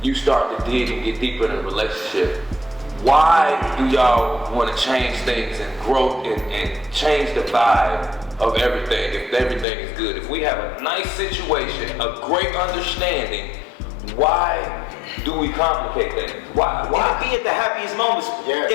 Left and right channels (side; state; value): right; drops out; at 9.7 s